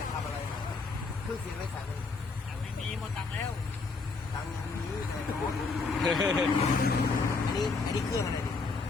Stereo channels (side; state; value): right; quieter; 4.2 dB